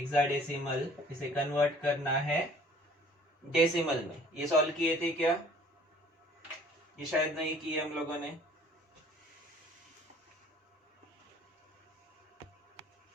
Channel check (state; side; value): normal; both; correlation 0.53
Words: इसे कन्वर्ट करना है डेसिमल में। ये सॉल्व किए थे क्या? ये शायद नहीं किए हम लोगों ने।